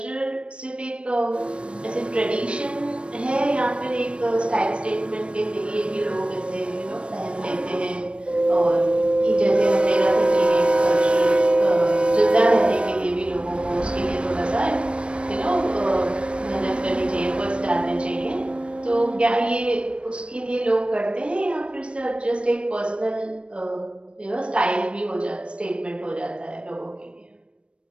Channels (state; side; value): late; left; 0.059 ms